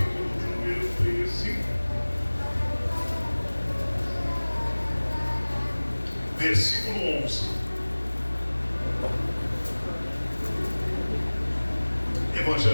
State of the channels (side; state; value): both; inverted; correlation -1.00